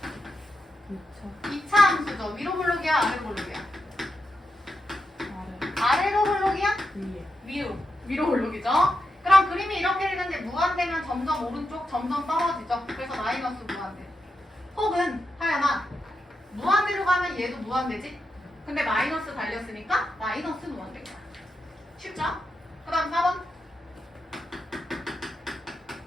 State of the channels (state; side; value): normal; both; correlation 0.87